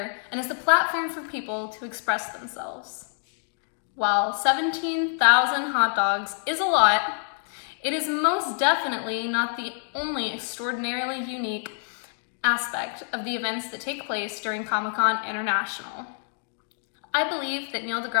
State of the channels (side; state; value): right; silent; digital silence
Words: and is a platform for people to express themselves. While 17,000 hot dogs is a lot, it is most definitely not the only extraordinarily unique aspect of the events that take place during Comic-Con International. I believe that Neil